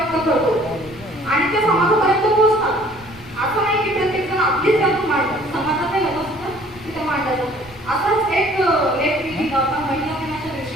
करतो आणि ते समाजापर्यंत पोहोचतात. असं नाही की प्रत्येक जण आपलीच त्यातून मांडतात, समाजात हे होत असतं तिथे मांडलं जातं. असाच एक लेख मी लिहिला होता महिला दिनाच्या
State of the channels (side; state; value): right; noise; rumble, 23 dB below the sound